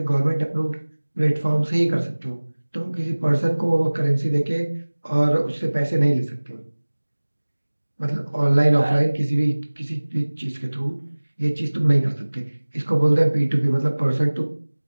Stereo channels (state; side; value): inverted; both; correlation -1.00